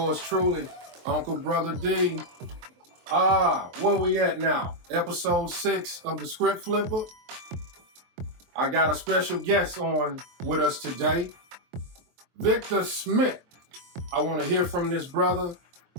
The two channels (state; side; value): late; left; 23 ms